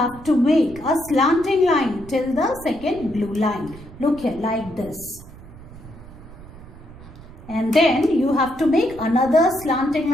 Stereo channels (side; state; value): right; noise; rumble, 18 dB below the sound